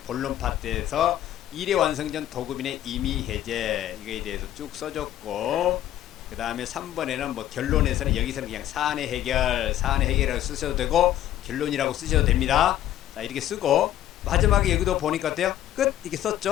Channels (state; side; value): quieter; right; 12.6 dB